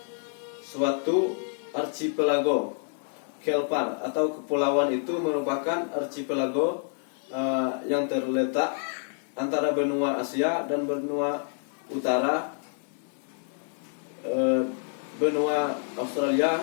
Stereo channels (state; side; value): silent; right; 59 dB below the other